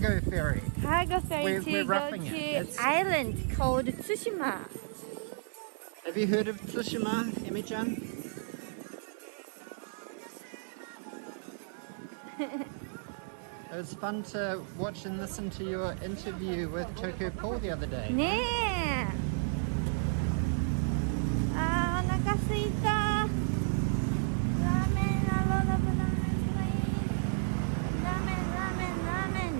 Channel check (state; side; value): silent; left; 56 dB below the other